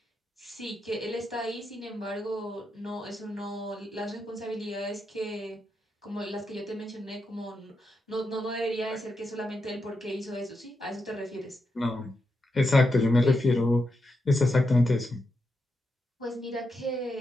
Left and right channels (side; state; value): both; normal; correlation 0.85